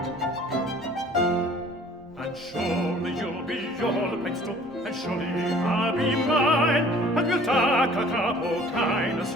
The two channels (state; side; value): normal; both; correlation 0.52